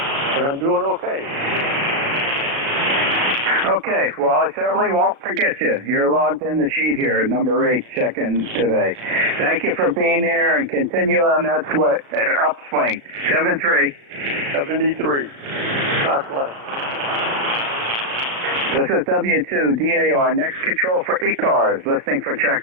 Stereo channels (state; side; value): late; left; 36 ms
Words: but I'm doing okay. Okay, well, I certainly won't forget you. You're logged in the sheet here, number 8, check-in today. Thank you for being here, and continue on that upswing. 73. 73. God bless. This is W2DAR. Next control for ECARS. Listening for